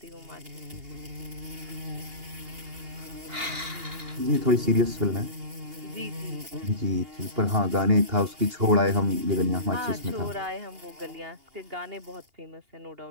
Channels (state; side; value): late; left; 2.8 ms